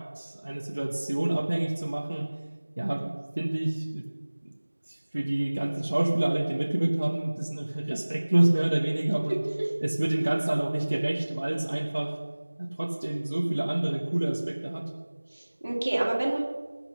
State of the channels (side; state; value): both; inverted; correlation -1.00